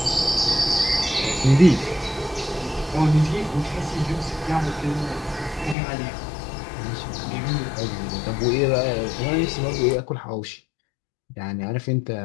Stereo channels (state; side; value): drops out; right; at 5.8 s